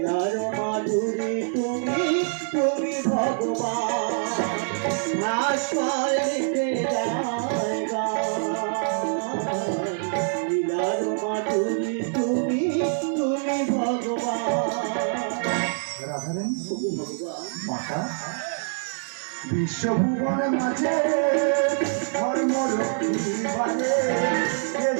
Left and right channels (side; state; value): left; silent; digital silence